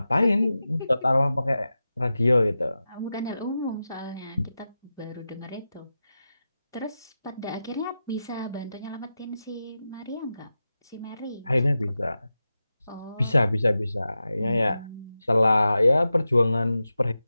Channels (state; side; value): inverted; both; correlation -0.92